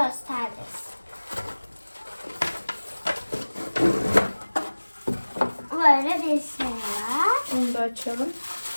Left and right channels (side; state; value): both; inverted; correlation -1.00